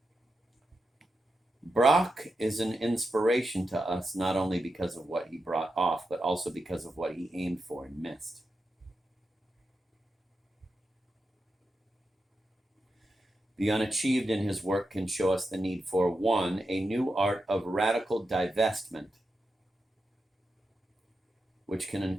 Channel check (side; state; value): both; normal; correlation 0.88